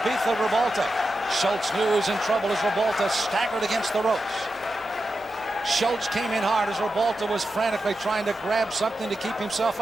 of Ribalta. Schulz knew he was in trouble as Ribalta staggered against the ropes. Schulz came in hard as Ribalta was frantically trying to grab something to keep himself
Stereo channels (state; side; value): normal; both; correlation 0.90